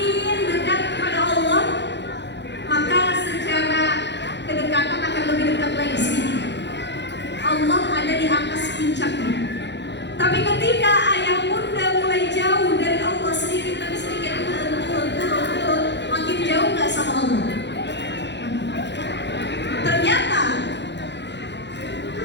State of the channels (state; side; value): late; right; 0.51 ms